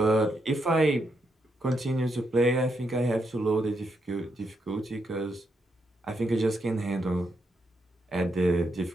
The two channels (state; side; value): normal; both; correlation 0.80